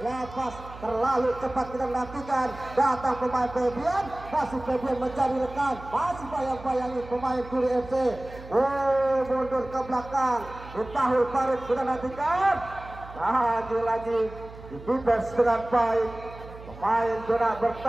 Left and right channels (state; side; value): noise; right; hum, 16 dB below the sound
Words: terlalu cepat kita nantikan. Datang pemain Febian. Masih Febian mencari rekan. Masih bayang-bayangi pemain Guri FC. Mundur ke belakang. Tahul Farid kita nantikan. Lagi-lagi dibebas dengan baik. Pemain zona